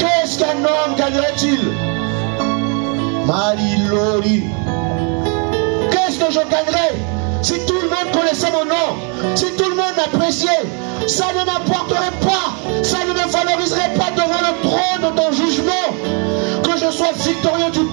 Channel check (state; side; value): quieter; left; 37.5 dB